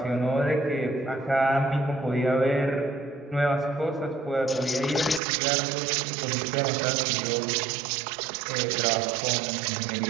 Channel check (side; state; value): left; drops out; at 5.2 s